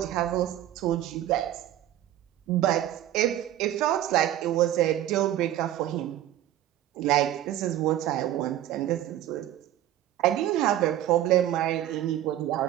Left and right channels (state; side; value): quieter; left; 12.8 dB